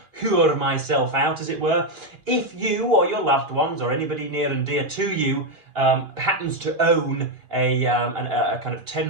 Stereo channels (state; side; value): late; left; 2.8 ms